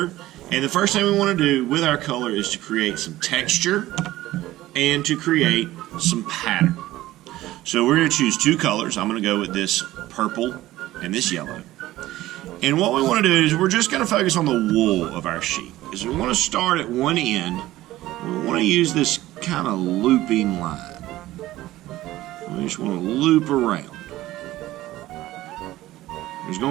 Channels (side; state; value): left; quieter; 16.0 dB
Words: And the first thing we want to do with our color is to create some texture and to create some pattern. So we're going to choose 2 colors. I'm going to go with this purple and this yellow. And what we want to do is we're just going to focus on the wool of our sheep. Is we want to start at one end. We want to use this kind of looping line. We just want to loop around. There's